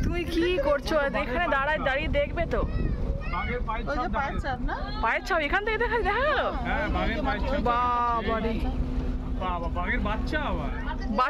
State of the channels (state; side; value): identical; both; correlation 1.00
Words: তুমি কি করছো এখানে? দাঁড়িয়ে দেখবে তো। বাঘের পায়ের ওই যে ছাপ পায়ের ছাপ না? পায়ের ছাপ এখান থেকে দেখা গেল। হ্যাঁ, বাঘের পায়ের ছাপ। বাবারে, বাবা, বাঘের বাচ্চা আবার।